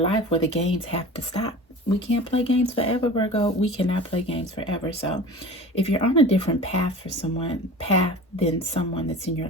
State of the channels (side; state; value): both; normal; correlation 0.38